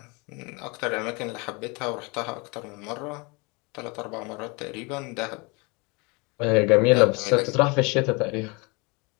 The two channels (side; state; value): right; quieter; 28.5 dB